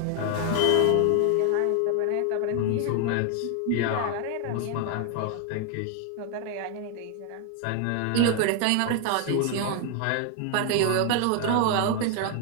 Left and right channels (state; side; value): different; both; correlation 0.00